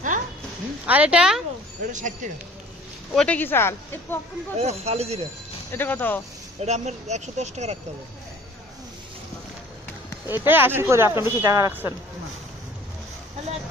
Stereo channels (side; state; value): both; normal; correlation 0.50